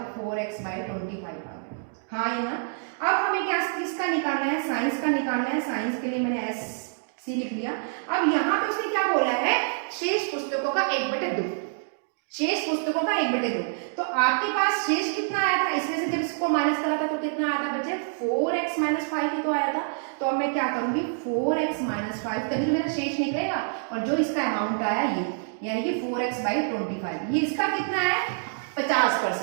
4x/25 आ गया, हाँ या ना। अब हमें क्या किसका निकालना है, साइंस का निकालना है। साइंस के लिए मैंने SC लिख लिया। अब यहाँ पे उसने क्या बोला है, शेष पुस्तकों का 1/2, शेष पुस्तकों का 1/2। तो आपके पास शेष कितना आया था, इसमें से जब इसको माइनस करा था तो कितना आया था बच्चे, 4x-5 ही तो आया था। तो अब मैं क्या करूंगी, 4x-5, तभी तो मेरा शेष निकलेगा, और जो इसका अमाउंट आया ये, यानी कि 4x/25, ये इसका कितना है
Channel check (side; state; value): left; silent; digital silence